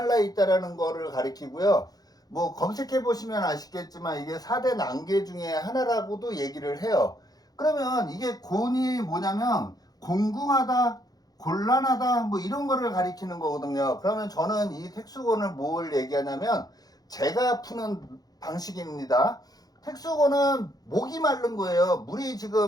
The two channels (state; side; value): late; right; 0.19 ms